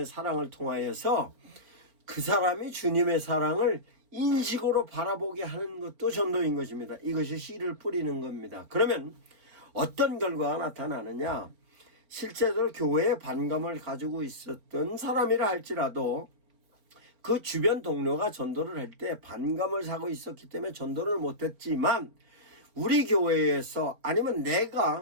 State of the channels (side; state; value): left; late; 4.6 ms